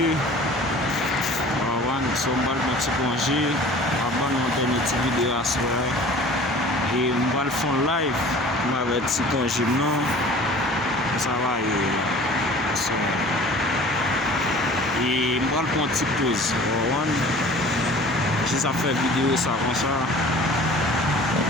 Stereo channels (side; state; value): both; normal; correlation 0.45